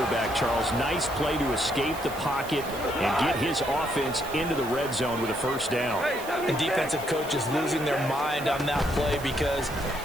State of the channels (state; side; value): noise; right; hiss, 15 dB below the sound